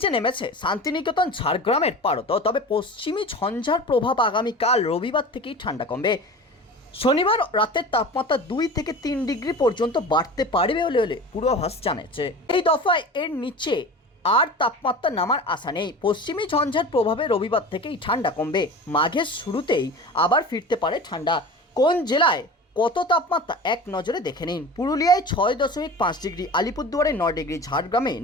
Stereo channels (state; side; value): normal; both; correlation 0.35